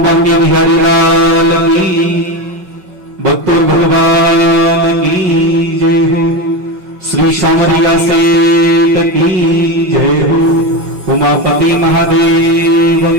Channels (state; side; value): late; left; 5.4 ms